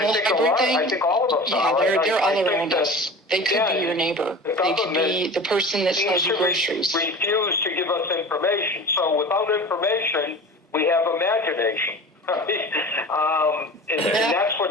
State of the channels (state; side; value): normal; both; correlation 0.35